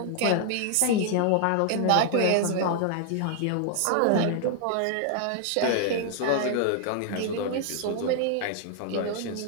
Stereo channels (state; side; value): different; both; correlation 0.00